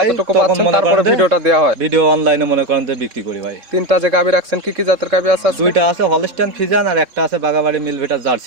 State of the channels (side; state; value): left; late; 3.6 ms